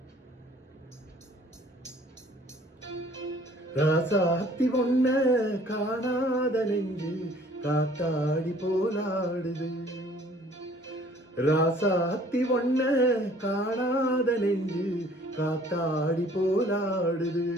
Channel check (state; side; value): normal; both; correlation 0.55